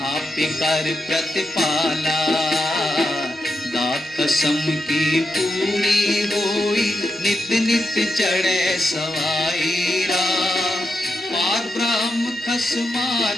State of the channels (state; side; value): normal; both; correlation 0.85